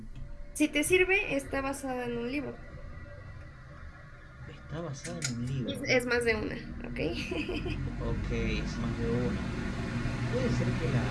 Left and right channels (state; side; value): identical; both; correlation 1.00